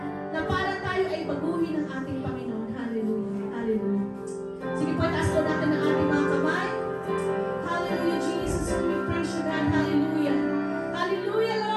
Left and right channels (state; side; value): identical; both; correlation 1.00